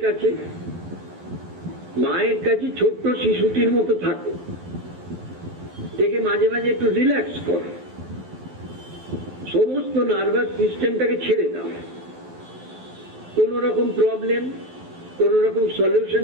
কাছে, মায়ের কাছে ছোট্ট শিশুটির মতো থাকো, থেকে মাঝে মাঝে একটু রিল্যাক্স করো, সমস্ত নার্ভাস সিস্টেমটাকে ছেড়ে দাও। কোন রকম প্রবলেম, কোন রকম সলিউশন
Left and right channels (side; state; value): left; late; 12 ms